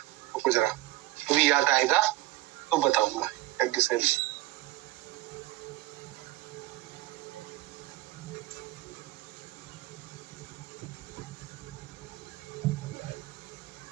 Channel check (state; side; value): quieter; left; 17.6 dB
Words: तो जरा अभी याद आएगा तो बताऊंगा। याज्ञसेनी,